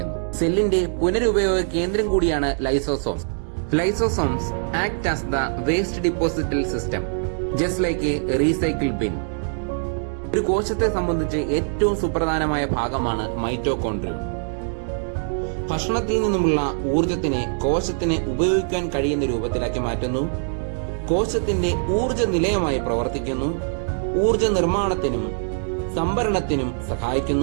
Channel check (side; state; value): left; silent; digital silence